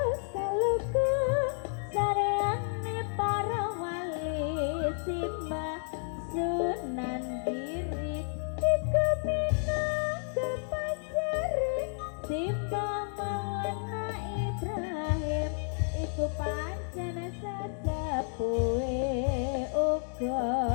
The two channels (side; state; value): right; silent; 57 dB below the other